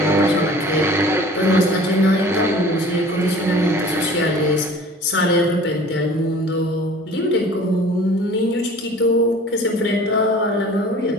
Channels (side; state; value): both; normal; correlation 0.46